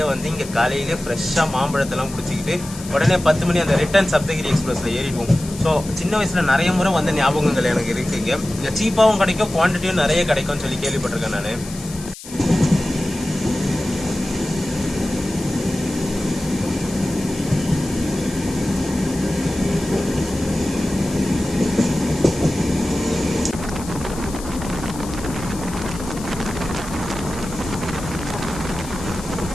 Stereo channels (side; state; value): left; noise; hiss, 14 dB below the sound